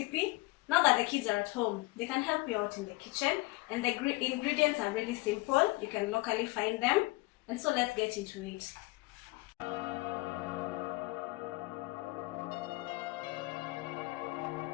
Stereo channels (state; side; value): quieter; right; 22.9 dB